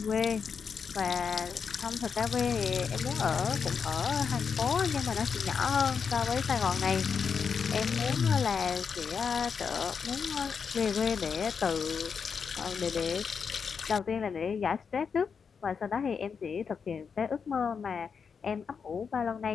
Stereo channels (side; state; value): right; quieter; 6.1 dB